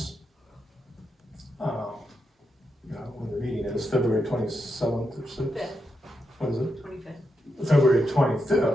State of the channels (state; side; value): normal; both; correlation 0.85